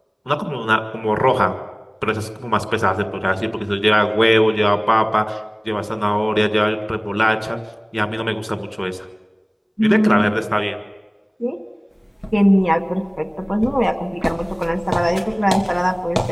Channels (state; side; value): identical; both; correlation 1.00